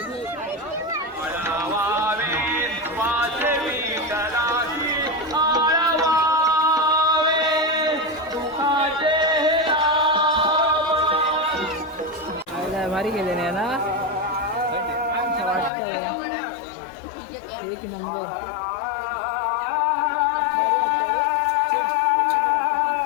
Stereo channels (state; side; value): drops out; right; at 15.7 s